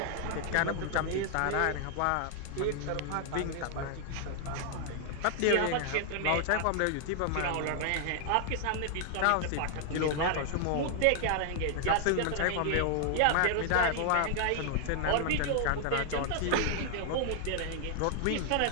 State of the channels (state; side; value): different; both; correlation 0.00